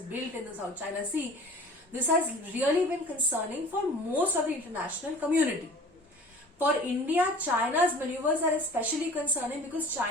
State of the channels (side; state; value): both; normal; correlation 0.43